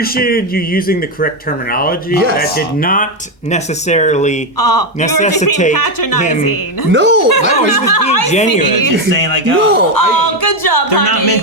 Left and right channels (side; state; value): both; normal; correlation 0.07